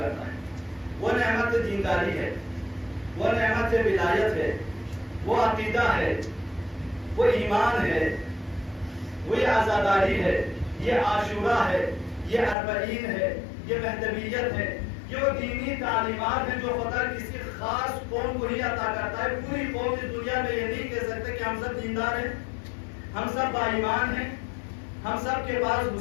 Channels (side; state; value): right; drops out; at 12.6 s